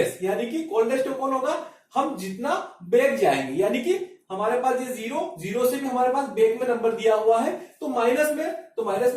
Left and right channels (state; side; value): identical; both; correlation 1.00